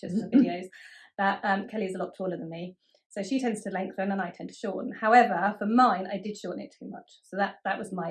and the videos, that Kelly's a lot taller than me. So she tends to lengthen and I tend to shorten. However, for mine, I did shorten it too much. So that was my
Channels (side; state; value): both; identical; correlation 1.00